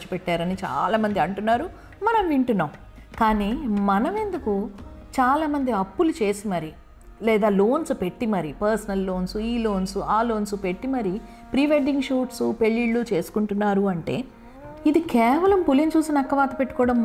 పెట్టారని చాలామంది అంటున్నారు, మనం వింటున్నాం. కానీ మనం ఎందుకు చాలామంది అప్పులు చేసి మరి లేదా లోన్స్ పెట్టి మరి, పర్సనల్ లోన్స్, ఈ లోన్స్ ఆ లోన్స్ పెట్టి మరి ప్రీ వెడ్డింగ్ షూట్స్ పెళ్ళిళ్ళు చేసుకుంటున్నారు అంటే ఇది కేవలం పులిని చూసి నక్కవాత పెట్టుకోవడం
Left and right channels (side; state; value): both; identical; correlation 1.00